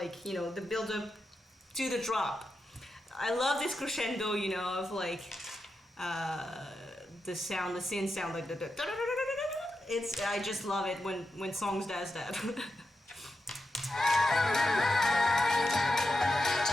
the build up to the drop. I love this crescendo, of like the sound, the synth sound, like I just love it when songs does that.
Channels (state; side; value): normal; both; correlation 0.88